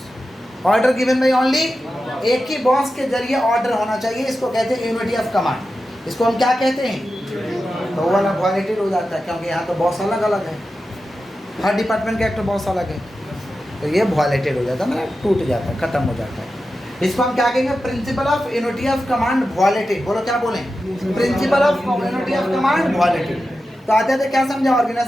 order given by only एक ही बॉस के जरिए ऑर्डर होना चाहिए, इसको कहते हैं यूनिटी ऑफ कमांड। इसको हम क्या कहते हैं? तो वो वाला वॉलेटिव हो जाता है, क्योंकि यहाँ तो बॉस अलग अलग है, हर डिपार्टमेंट का एक तो बॉस अलग है, तो ये वॉलेटेड हो जाता है, मतलब टूट जाता है, खत्म हो जाता है। इसको हम क्या कहेंगे? Principal of unity of command वॉलेटेड। बोलो क्या बोलें? Principal of unity of command वॉलेटेड। तो आते थे क्या समझा?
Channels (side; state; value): both; normal; correlation 0.92